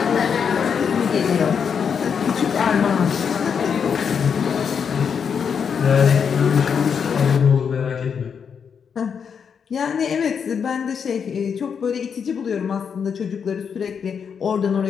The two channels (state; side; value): quieter; right; 6.8 dB